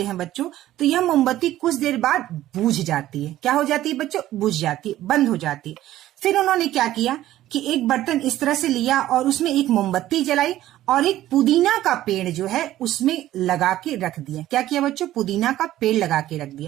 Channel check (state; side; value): quieter; left; 14.1 dB